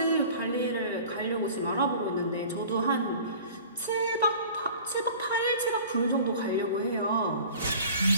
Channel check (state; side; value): inverted; both; correlation -0.44